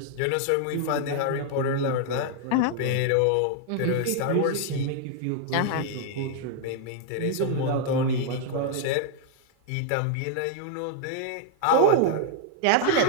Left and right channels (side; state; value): both; different; correlation 0.00